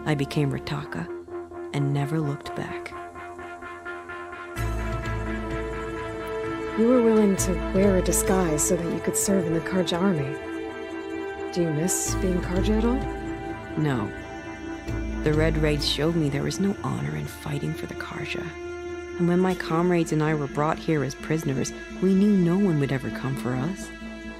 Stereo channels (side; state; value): both; identical; correlation 1.00